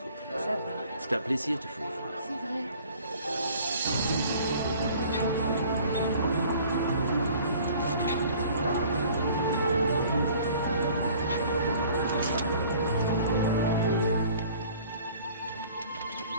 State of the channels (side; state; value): both; inverted; correlation -0.51